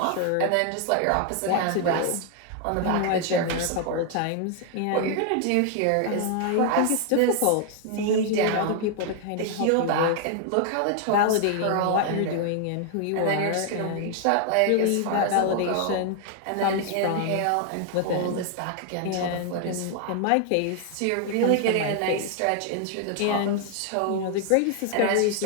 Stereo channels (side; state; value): both; different; correlation 0.00